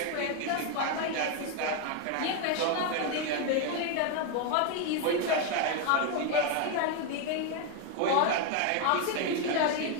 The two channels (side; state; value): both; different; correlation 0.01